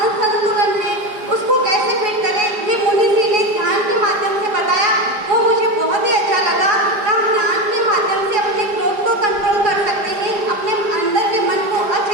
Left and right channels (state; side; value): late; left; 5.0 ms